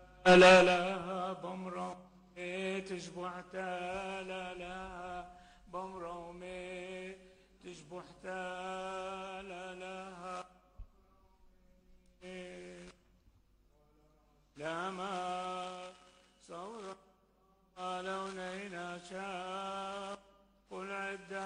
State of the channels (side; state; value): both; identical; correlation 1.00